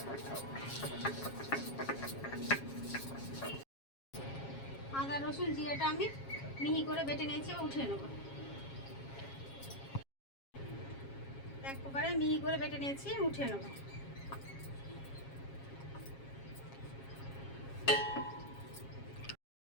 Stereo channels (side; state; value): right; late; 7.3 ms